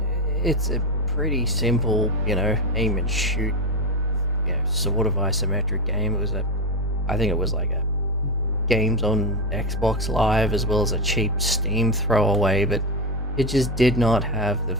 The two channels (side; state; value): both; normal; correlation 0.14